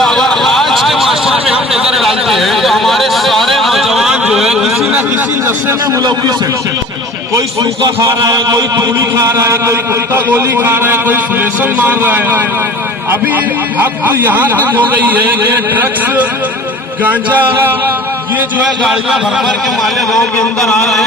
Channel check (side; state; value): both; normal; correlation 0.42